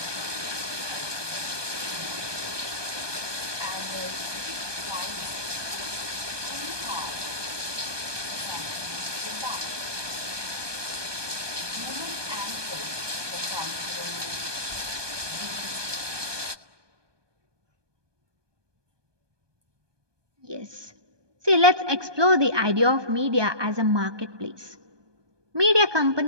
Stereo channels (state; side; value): late; left; 1.2 ms